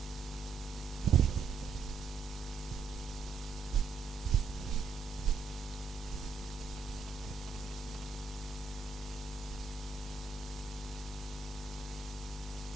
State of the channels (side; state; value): left; quieter; 4.8 dB